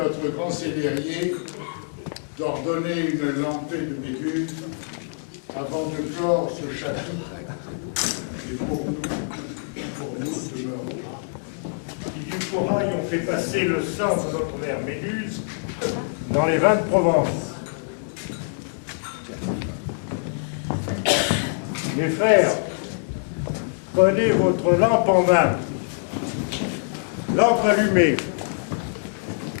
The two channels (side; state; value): right; silent; digital silence